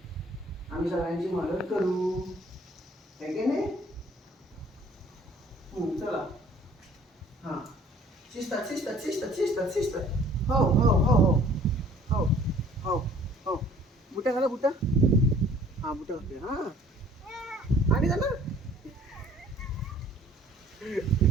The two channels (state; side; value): normal; both; correlation 0.54